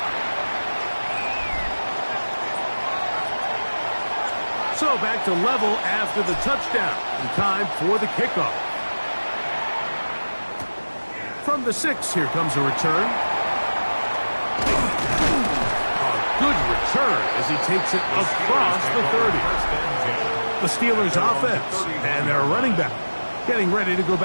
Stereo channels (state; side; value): inverted; both; correlation -1.00